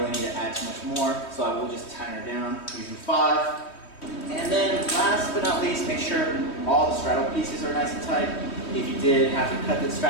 need to add too much more. So I will just tighten her down using 5. And then last but not least, make sure all the straddle pieces are nice and tight. If you did have to cut the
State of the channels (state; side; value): late; right; 3.2 ms